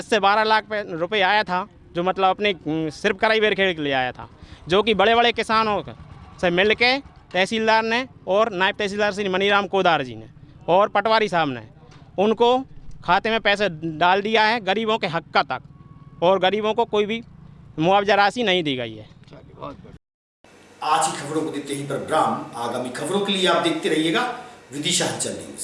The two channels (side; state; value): both; identical; correlation 1.00